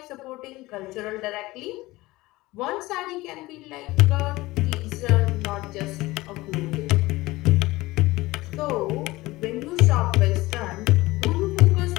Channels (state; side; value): quieter; right; 19.7 dB